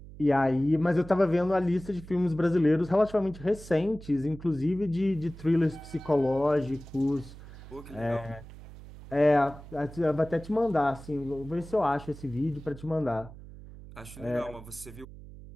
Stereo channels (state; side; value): noise; right; hum, 16 dB below the sound